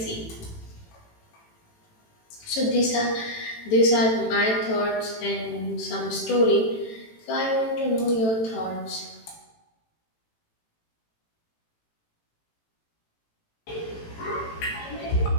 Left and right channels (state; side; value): late; right; 18 ms